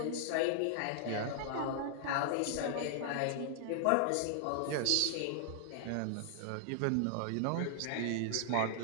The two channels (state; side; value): different; both; correlation -0.01